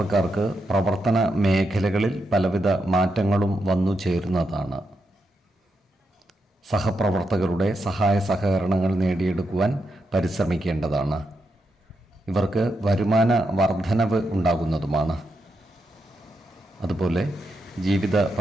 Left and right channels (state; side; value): normal; both; correlation 0.84